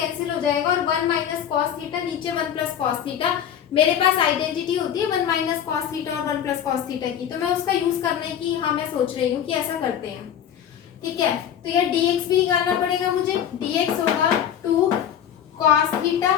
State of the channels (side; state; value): right; quieter; 9.4 dB